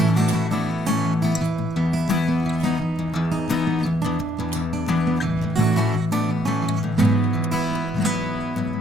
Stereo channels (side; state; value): both; normal; correlation 0.70